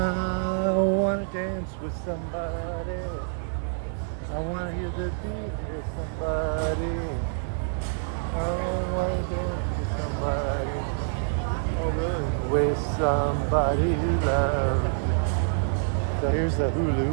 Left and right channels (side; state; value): left; silent; digital silence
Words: want to dance with somebody. I want to hear the beat with somebody. With somebody who loves me. So here's the